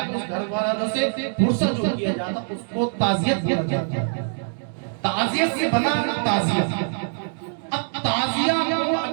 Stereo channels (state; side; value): silent; left; digital silence